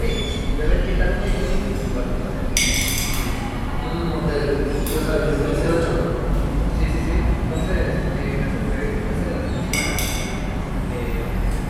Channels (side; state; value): both; identical; correlation 1.00